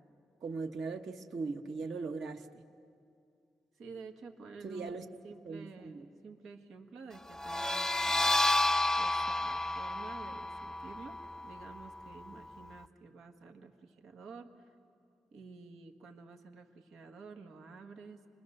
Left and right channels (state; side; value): normal; both; correlation 0.87